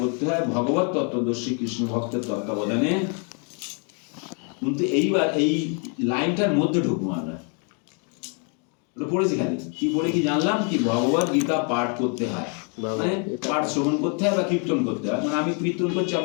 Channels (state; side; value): quieter; right; 39.0 dB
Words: হয় ভগবত তত্ত্বদর্শী কৃষ্ণ ভক্তের তত্ত্বাবধানে। কিন্তু এইবার এই লাইনটার মধ্যে ঢুকবো আমরা। পড়েছি খালি কি পড়ে কি জানলাম কি ভগবদ গীতা পাঠ করতে হয়, মানে পাঠ শ্রবণ করতে হয় বা কীর্তন করতে হয়। মানে আমি কীর্তন করছি,